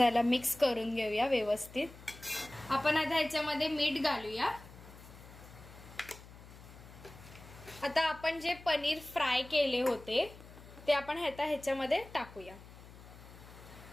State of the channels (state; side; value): noise; left; hum, 18 dB below the sound